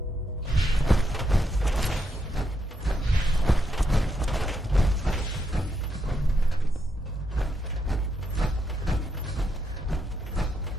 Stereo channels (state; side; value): normal; both; correlation 0.80